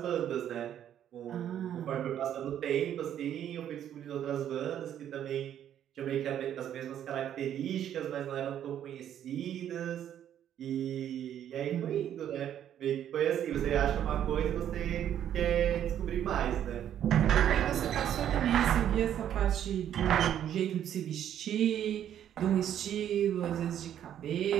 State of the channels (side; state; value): left; quieter; 10.3 dB